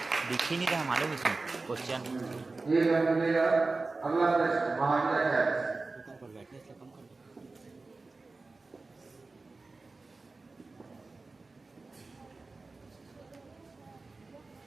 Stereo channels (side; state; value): left; quieter; 3.6 dB